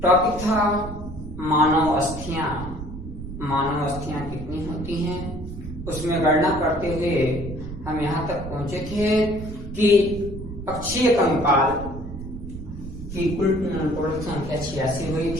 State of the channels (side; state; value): right; noise; rumble, 10 dB below the sound